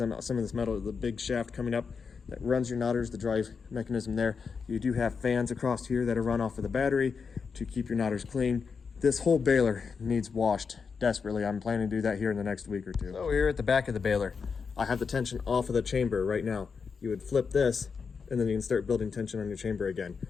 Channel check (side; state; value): right; quieter; 5.6 dB